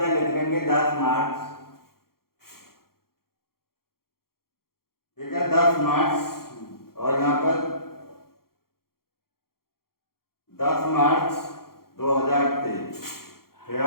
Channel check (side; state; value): right; late; 0.93 ms